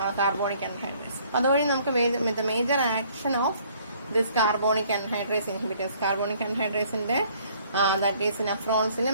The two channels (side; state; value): both; inverted; correlation -0.60